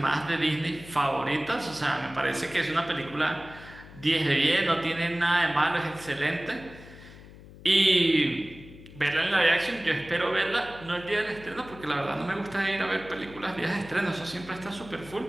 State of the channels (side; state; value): left; noise; hum, 18 dB below the sound